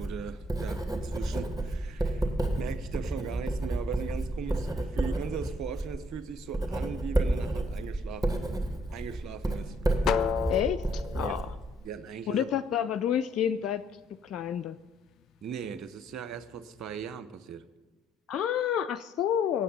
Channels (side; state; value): both; normal; correlation 0.68